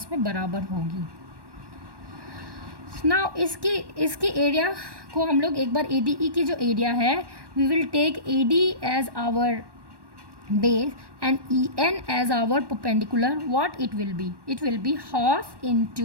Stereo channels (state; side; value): late; left; 1.1 ms